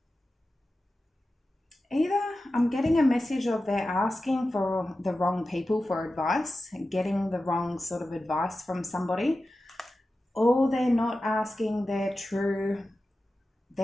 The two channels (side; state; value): both; normal; correlation 0.93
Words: Either I'm getting a message of they're asking for the wrong people for advice, getting the wrong sort of advice from somebody, or they're not asking they're